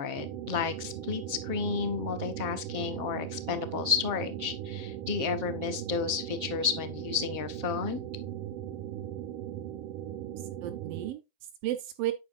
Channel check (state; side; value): late; left; 7.4 ms